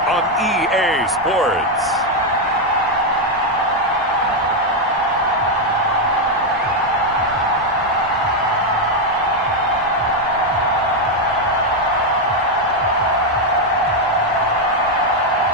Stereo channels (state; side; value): normal; both; correlation 0.03